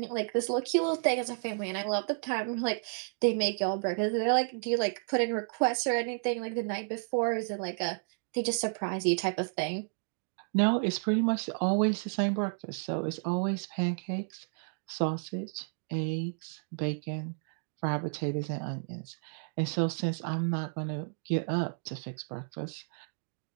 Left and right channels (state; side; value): silent; left; digital silence